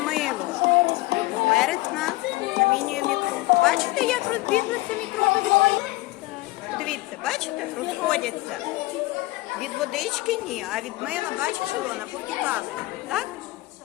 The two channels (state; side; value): quieter; right; 20.2 dB